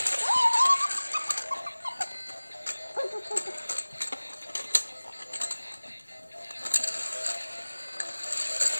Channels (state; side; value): inverted; both; correlation -1.00